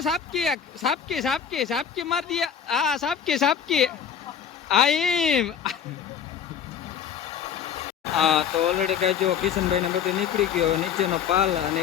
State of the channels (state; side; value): quieter; right; 7.9 dB